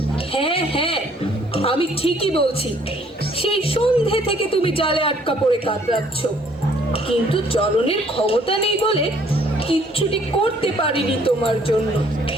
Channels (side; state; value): both; normal; correlation 0.62